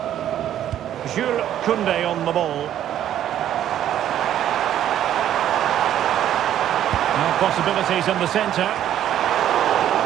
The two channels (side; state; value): left; quieter; 11.2 dB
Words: Jules Koundé on the ball. Now possibilities in the centre.